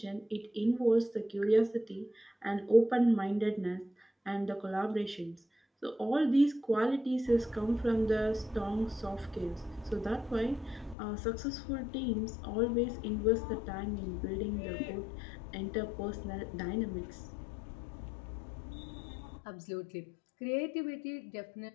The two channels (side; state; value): right; drops out; at 11.0 s